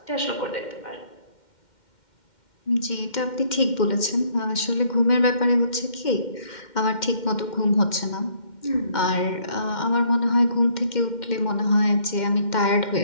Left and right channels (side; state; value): right; late; 2.1 ms